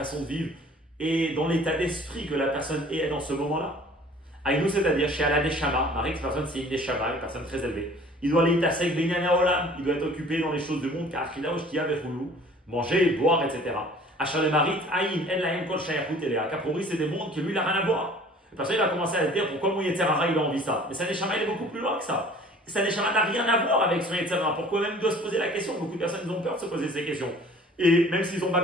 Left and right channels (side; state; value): both; normal; correlation 0.50